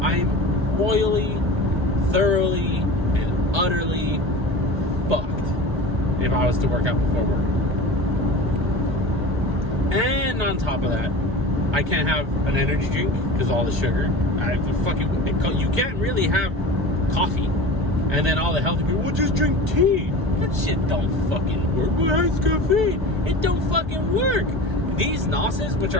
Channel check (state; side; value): late; left; 1.2 ms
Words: I'm royally, thoroughly, and utterly fucked if I was to work out before work. And on top of that, I can't have an energy drink because of all the sugar. You can't really have coffee. And then all the healthy people, well, just drink tea. That shit don't fucking work. Well, it's caffeine. It don't fucking work. These Nosses, which